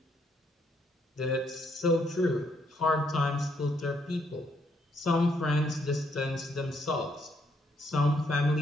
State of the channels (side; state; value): both; normal; correlation 0.73